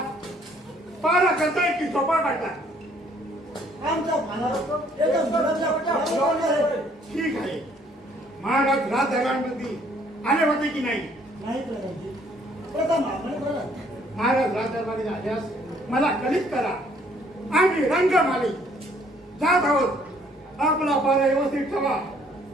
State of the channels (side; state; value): both; normal; correlation 0.62